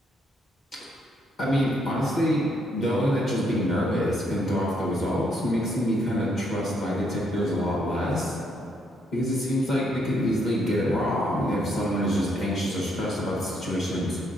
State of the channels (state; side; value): normal; both; correlation 0.73